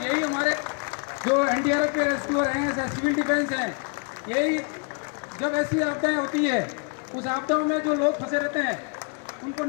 यही हमारे जो एनडीआरएफ के रेस्क्यूअर हैं, सिविल डिफेंस हैं, यही जब ऐसी आपदाएं होती है, उस आपदाओं में जो लोग फंसे रहते हैं उनको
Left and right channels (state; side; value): quieter; right; 36.6 dB